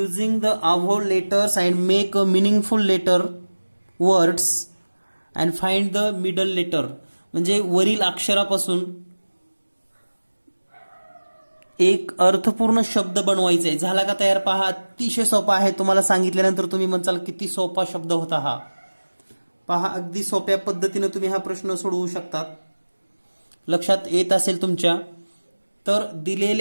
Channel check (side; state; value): both; inverted; correlation -1.00